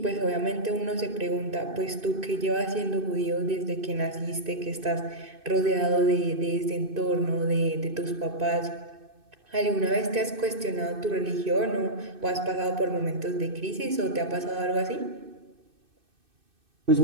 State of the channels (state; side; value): late; left; 2.6 ms